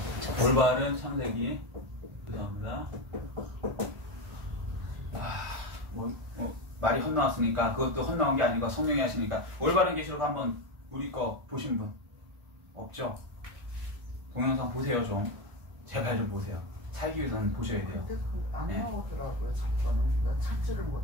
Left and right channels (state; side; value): late; left; 1.5 ms